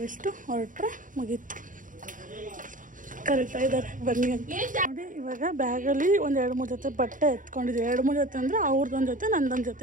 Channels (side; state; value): left; late; 0.38 ms